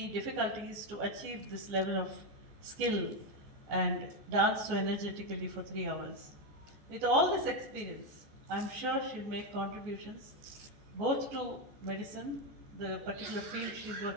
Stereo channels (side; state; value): left; late; 14 ms